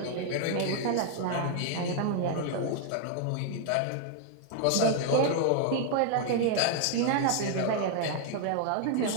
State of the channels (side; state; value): both; different; correlation 0.00